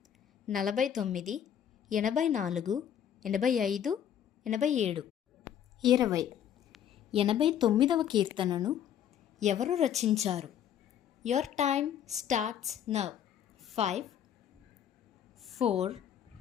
49, 84, 85, 87. 20. 89వ కీర్తనను ఎవరు రచించారు? Your time starts now. 5, 4,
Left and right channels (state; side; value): quieter; right; 9.5 dB